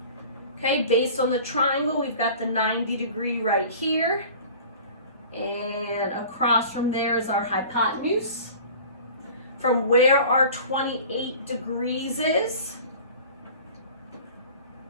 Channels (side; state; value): both; inverted; correlation -0.42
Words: Okay, based on the triangle, we've got the 90 degree right here. And across from there is our hypotenuse. From where our 28 degrees is,